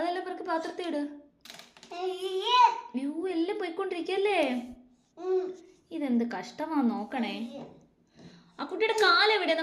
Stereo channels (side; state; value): both; identical; correlation 1.00